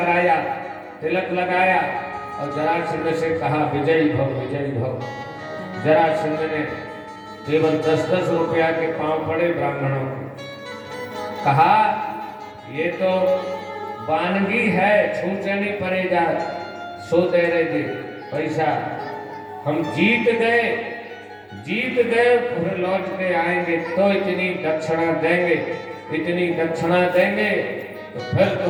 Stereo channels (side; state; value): both; identical; correlation 1.00